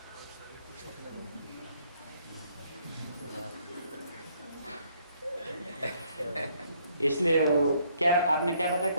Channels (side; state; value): both; inverted; correlation -0.68